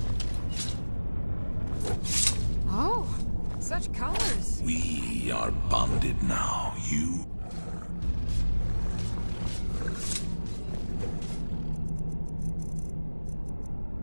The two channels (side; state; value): both; inverted; correlation -1.00